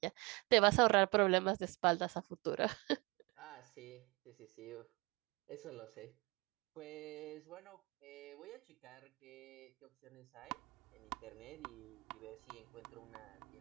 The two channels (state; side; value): quieter; left; 26.1 dB